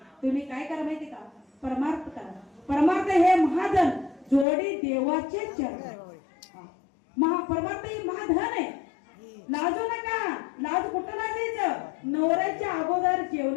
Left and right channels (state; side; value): drops out; right; at 4.5 s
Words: तुम्ही काय करा माहिती का परमार्थ करा परमार्थ हे महाधन जोडी देवाचे चरण परमार्थ ही महाधन आहे लाजू नका लाज कुठं लाजायचं नवऱ्याच्या अगोदर